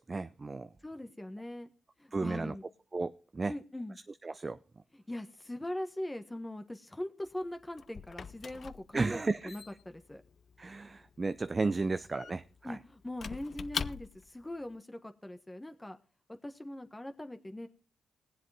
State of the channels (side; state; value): both; normal; correlation 0.95